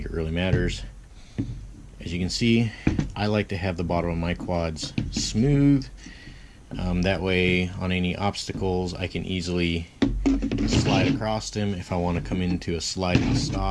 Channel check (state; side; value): identical; both; correlation 1.00